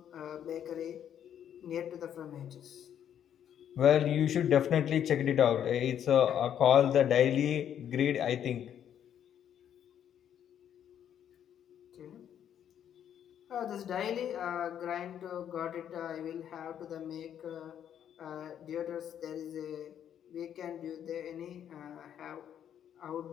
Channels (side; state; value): right; quieter; 9.6 dB